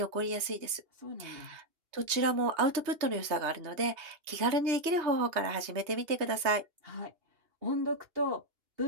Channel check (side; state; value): left; late; 3.2 ms